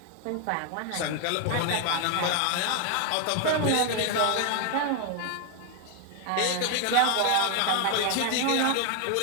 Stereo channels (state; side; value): different; both; correlation 0.00